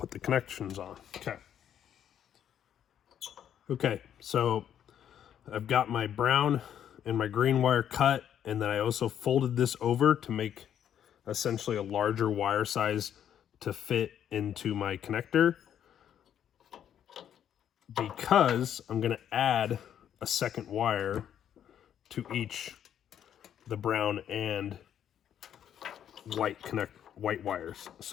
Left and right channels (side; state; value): right; quieter; 9.7 dB